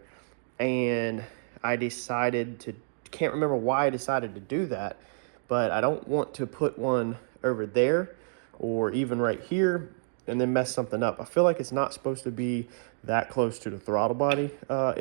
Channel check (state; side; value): silent; left; digital silence